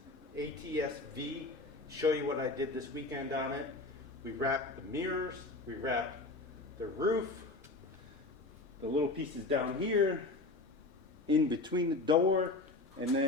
ATS-V, show you what I did this weekend on it. We wrapped the mirrors, we wrapped the roof, the little pieces down here, in between the door, and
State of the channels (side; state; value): right; quieter; 3.2 dB